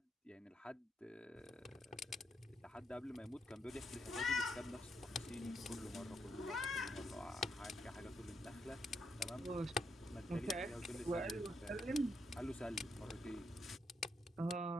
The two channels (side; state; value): both; normal; correlation 0.79